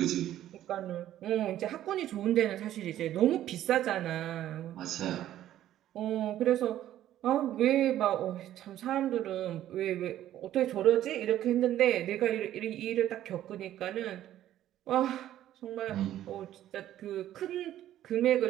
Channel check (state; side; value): quieter; left; 12.5 dB